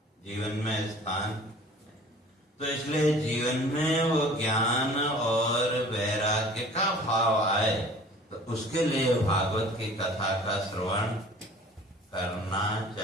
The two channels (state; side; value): normal; both; correlation 0.47